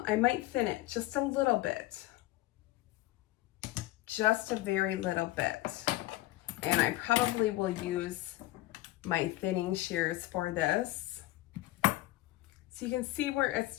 might thin it just a little bit. Just a very little bit. And I probably will use my thinning shears for this. So you can see where it's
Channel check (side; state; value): right; quieter; 17.2 dB